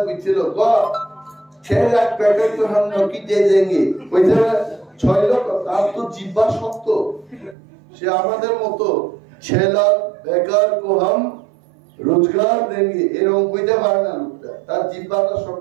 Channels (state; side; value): drops out; left; at 7.6 s